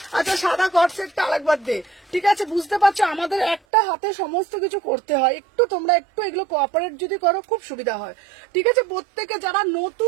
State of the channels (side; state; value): left; drops out; at 3.6 s